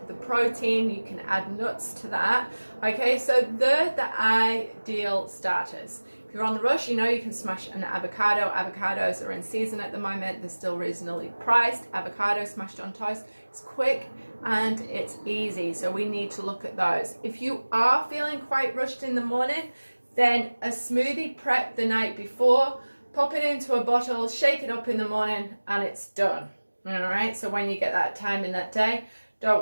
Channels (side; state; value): both; inverted; correlation -1.00